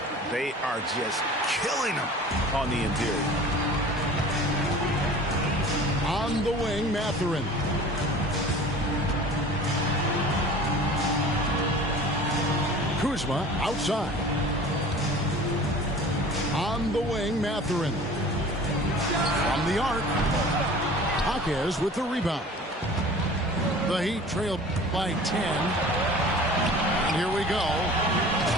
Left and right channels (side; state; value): both; normal; correlation 0.43